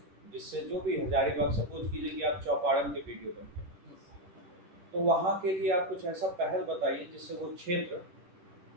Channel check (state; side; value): late; left; 11 ms